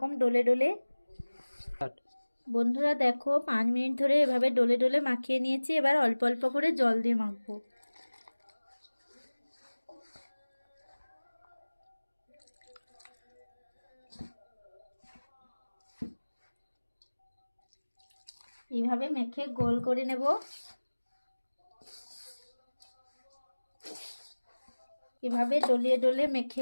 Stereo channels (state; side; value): inverted; both; correlation -1.00